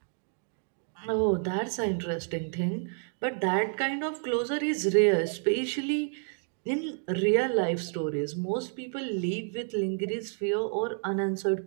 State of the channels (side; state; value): left; silent; 58 dB below the other